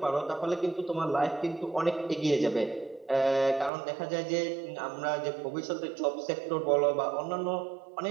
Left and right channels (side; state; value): left; drops out; at 3.7 s